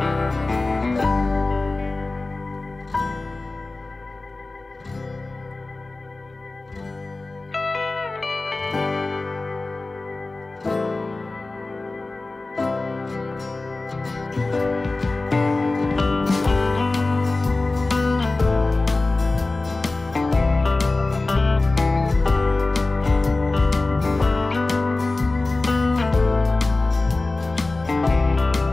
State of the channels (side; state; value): right; quieter; 3.3 dB